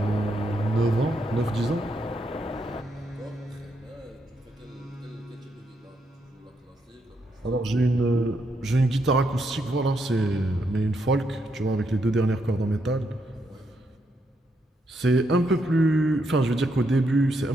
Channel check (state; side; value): normal; both; correlation 0.79